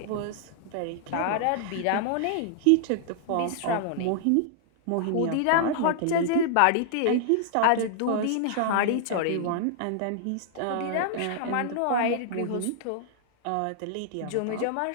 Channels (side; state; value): both; different; correlation -0.01